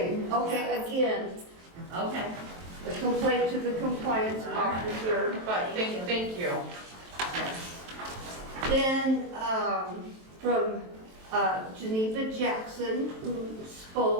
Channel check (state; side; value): late; left; 23 ms